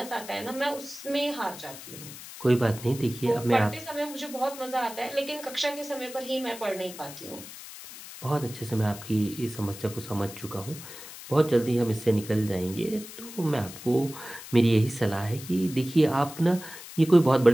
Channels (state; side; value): noise; left; hiss, 14 dB below the sound